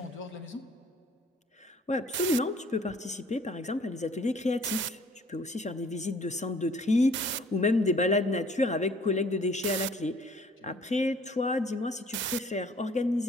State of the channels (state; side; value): normal; both; correlation 0.56